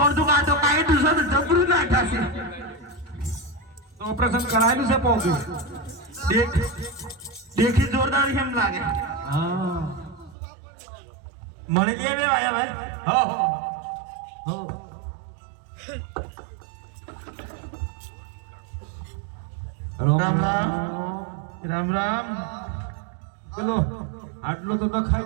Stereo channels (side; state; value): left; drops out; at 10.4 s